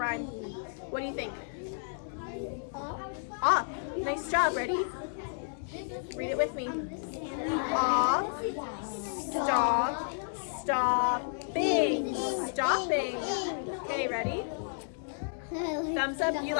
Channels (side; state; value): right; silent; digital silence